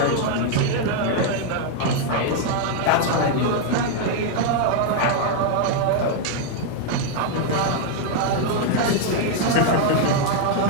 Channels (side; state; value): both; different; correlation 0.00